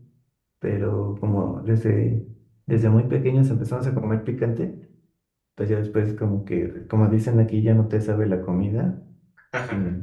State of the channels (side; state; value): both; identical; correlation 1.00